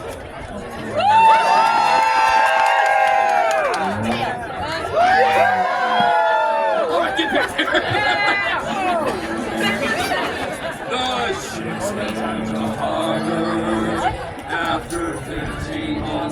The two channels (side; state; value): both; identical; correlation 1.00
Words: All right, get back there. The ships returned to harbor after 15